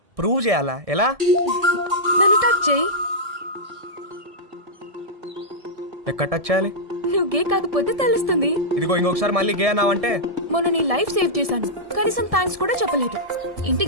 ప్రూవ్ చేయాలా? ఎలా? నన్ను టచ్ చేయి. ఎక్కడ టచ్ చేయాలి? నువ్వు గే కాకపోతే తెలుస్తుంది. ఇదిగో ఇంకొకసారి మళ్ళీ గే అన్నావంటే. మొన్న నీ లైఫ్ సేవ్ చేశాను, కనీసం థ్యాంక్స్ కూడా చెప్పలేదు.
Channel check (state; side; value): late; left; 1.7 ms